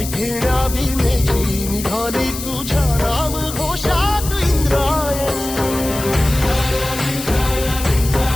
घेण्या भीमेची निघाली तुझ्या राम घोषात इंद्रायणी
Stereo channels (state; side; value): noise; left; hiss, 9 dB below the sound